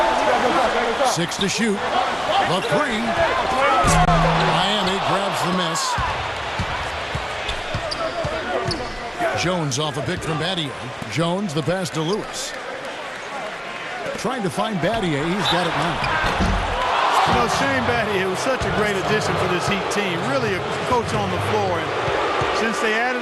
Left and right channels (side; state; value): both; identical; correlation 1.00